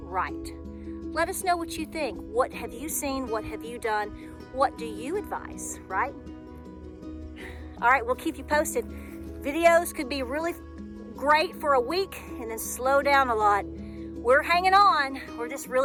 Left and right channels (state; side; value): identical; both; correlation 1.00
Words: Let us know what you think. What have you seen? What have you done? What do you advise, right? All right, we'll keep you posted. Videos could be really great for a week and then slow down a lot. We're hanging on. We're just